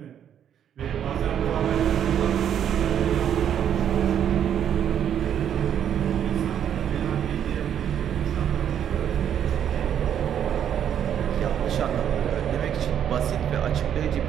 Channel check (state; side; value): quieter; left; 9.3 dB